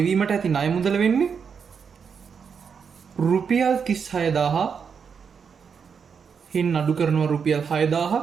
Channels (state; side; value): quieter; left; 6.4 dB